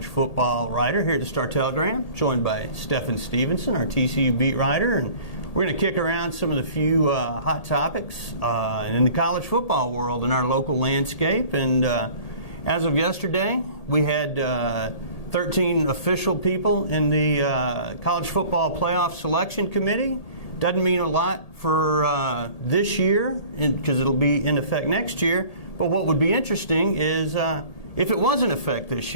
football writer here at the Star-Telegram, joined by Stephen Stevenson, our TCU beat writer, and we're going to kick around some of the few hot topics in the college football world in our local landscape. And as of yesterday, we had 13 official people in the College Football Playoff Selection Committee. Doesn't mean a lot for this year because it'll be in effect next year. But what would be interesting is if it was in effect this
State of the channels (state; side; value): late; right; 1.8 ms